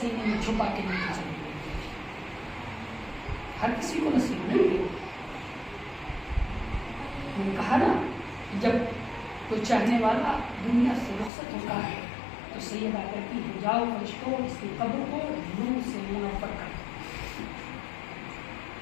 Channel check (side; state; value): right; drops out; at 11.3 s